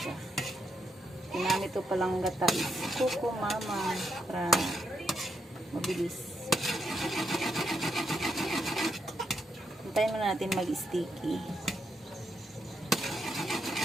Ginamit ko palang gata is kuko mama para mabilis. Hintayin muna natin mag-sticky.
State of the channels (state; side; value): normal; both; correlation 0.80